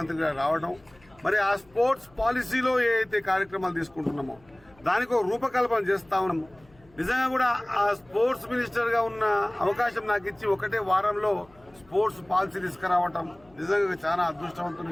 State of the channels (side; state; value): left; noise; hum, 29 dB below the sound